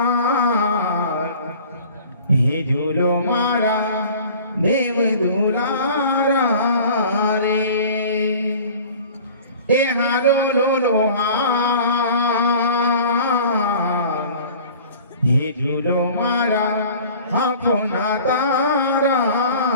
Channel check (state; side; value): inverted; both; correlation -0.44